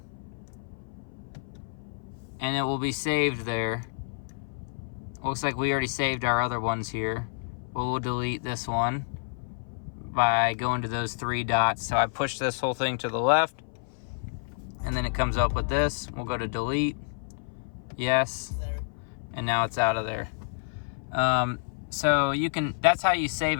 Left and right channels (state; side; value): silent; right; 57 dB below the other